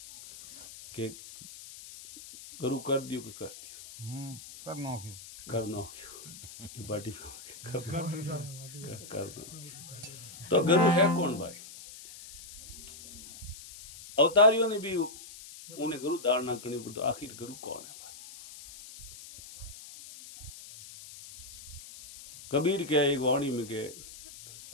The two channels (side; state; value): left; noise; hiss, 15 dB below the sound